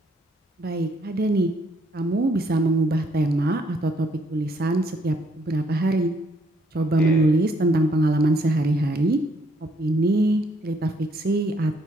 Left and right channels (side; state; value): both; normal; correlation 0.69